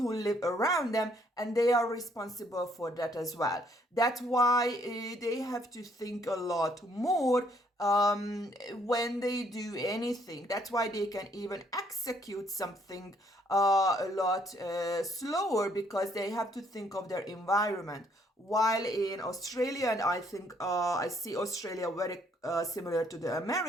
live around them, and they are responsible for that as well. That's why they have to think a lot more when they do anything. That's why they can even execute something a lot slower, because they have to think of their environment. While in Australia, and I think I see Australia very similar to the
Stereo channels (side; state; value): both; normal; correlation 0.67